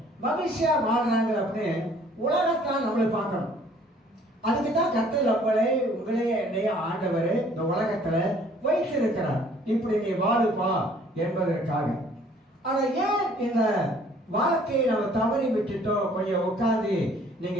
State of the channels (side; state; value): both; normal; correlation 0.57